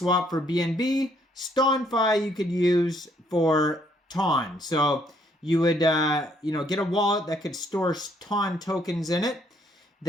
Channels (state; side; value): normal; both; correlation 0.68